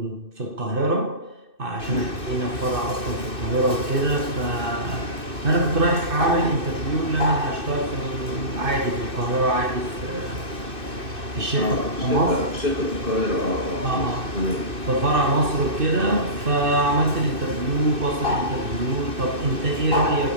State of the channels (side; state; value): left; late; 2.6 ms